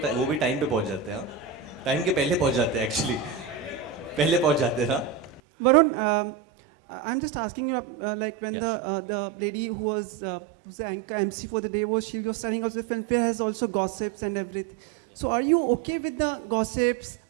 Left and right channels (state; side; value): drops out; left; at 5.4 s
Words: भी टाइम पे पहुंच जाते हैं. टाइम के पहले पहुंच जाते हैं एक्चुअली. पहले पहुंच जाते हैं ना. Varun, I'm just asking you, like when the lady who was the anchor MC for the day she was telling us the Filmfare has also gossips and everything. So are you okay with the gossips,